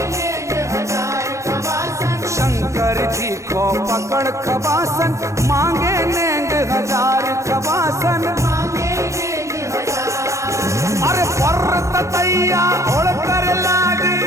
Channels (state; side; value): late; left; 0.15 ms